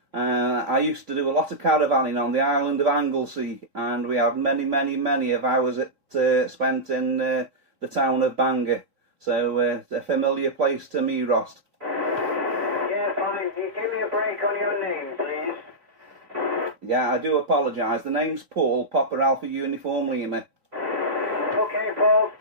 I used to do a lot of caravanning on the island of Anglesey, and we have many of hours spent in the town of Bangor. So it's a familiar place to me, Ross. Yeah, fine. Can you give me a break on your name, please? Yeah, I do apologise. The name's Paul, Papa Alpha Uniform Lima. Okay, Paul.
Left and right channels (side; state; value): left; late; 3.7 ms